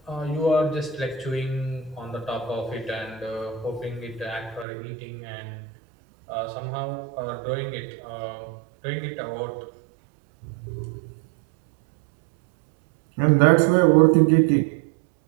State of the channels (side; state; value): left; drops out; at 4.7 s